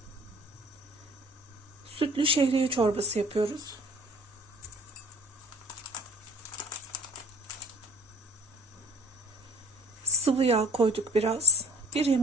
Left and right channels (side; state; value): both; normal; correlation 0.49